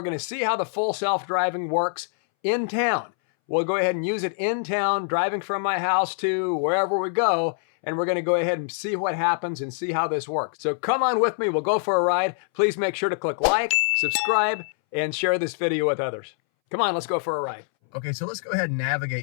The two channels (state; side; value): silent; right; 62 dB below the other